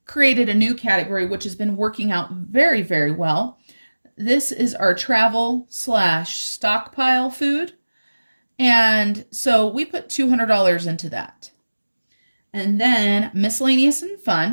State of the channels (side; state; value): both; inverted; correlation -1.00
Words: created a new category, which has been working out very, very well. This is our travel / stockpile food. And so we put $200 into that. And then miscellaneous and